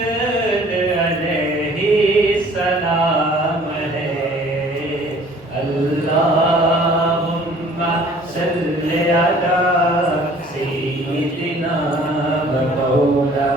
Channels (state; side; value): normal; both; correlation 0.53